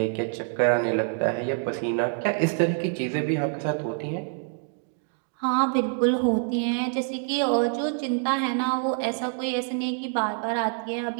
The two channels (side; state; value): left; silent; 56 dB below the other